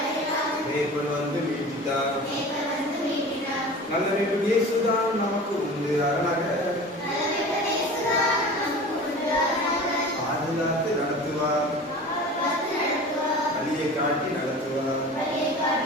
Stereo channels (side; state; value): both; normal; correlation 0.38